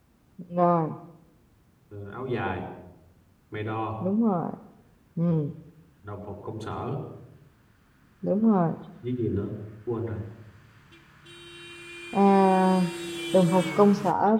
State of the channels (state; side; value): identical; both; correlation 1.00